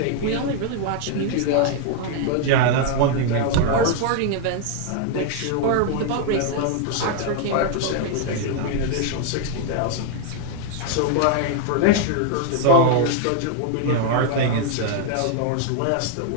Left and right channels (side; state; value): both; different; correlation 0.00